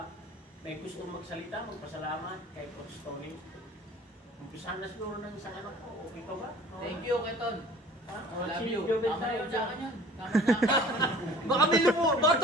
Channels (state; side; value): normal; both; correlation 0.47